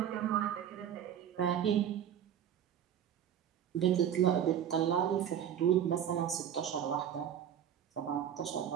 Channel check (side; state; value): left; quieter; 9.5 dB